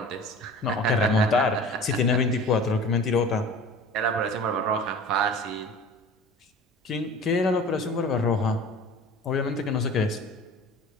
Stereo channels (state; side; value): normal; both; correlation 0.41